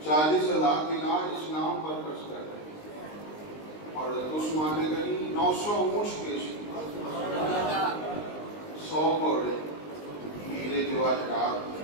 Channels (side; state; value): right; late; 19 ms